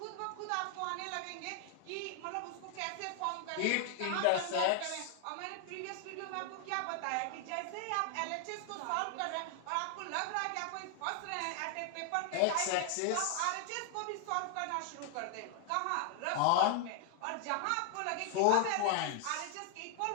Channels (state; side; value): different; both; correlation 0.00